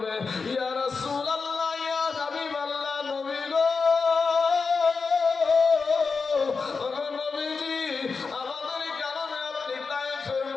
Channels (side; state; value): right; quieter; 4.8 dB